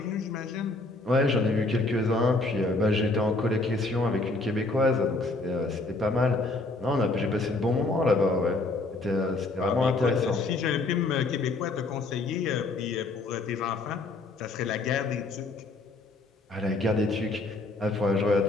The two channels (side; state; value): right; quieter; 3.1 dB